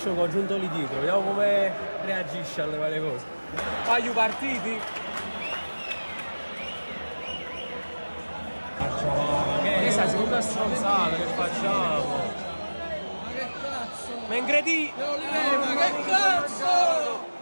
con giuntoli dietro, vediamo come reagisce alle varie cose. Wagyu partiti? Che sta seconda stronzata che facciamo? Ma che cazzo? Ma ingredi! Ma che cazzo?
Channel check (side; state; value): both; inverted; correlation -1.00